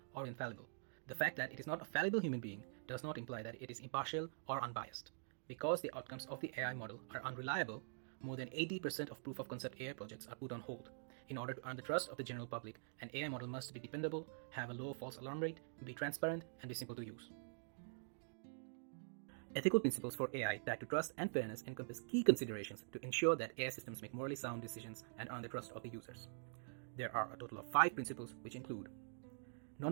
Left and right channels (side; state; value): left; silent; digital silence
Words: or infallible. The fact that it is not a fallible human being does not imply that it is impartial or unbiased. Because the outcomes of the AI model are unreliable, more than 80% of proof of concept AI projects are put on hold. In order to earn the trust of the general public, an AI model must be dependable, have a low false alarm rate, be transparent, and be simple to use. Ethical principles for AI tied to trust and fairness encompass key considerations to ensure that AI systems make morally sound decisions and earn the trust of the users. There are a total of 5 principles which include